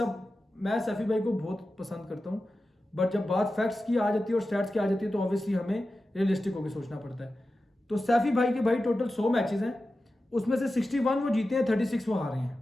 मैं सैफी भाई को बहुत पसंद करता हूँ, बट जब बात फैक्ट्स की आ जाती है और स्टैट्स की आ जाती है तो ऑब्वियसली हमें रियलिस्टिक होकर सोचना पड़ता है। तो सैफी भाई के भाई टोटल 100 मैचेस हैं, उसमें से 61 वो जीते हैं, 36 वो हारे हैं।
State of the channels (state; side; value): normal; both; correlation 0.93